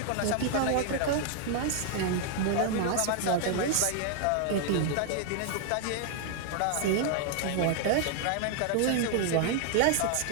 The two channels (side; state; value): both; different; correlation 0.00